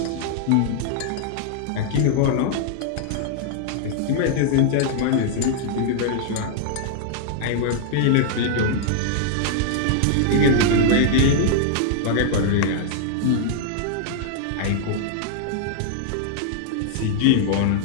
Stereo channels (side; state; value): both; different; correlation -0.01